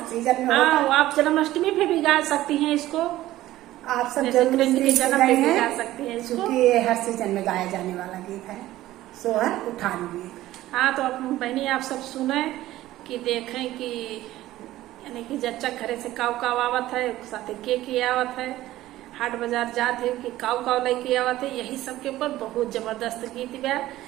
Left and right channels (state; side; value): quieter; left; 15.3 dB